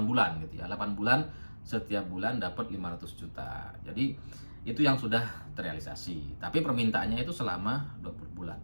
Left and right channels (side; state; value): both; inverted; correlation -1.00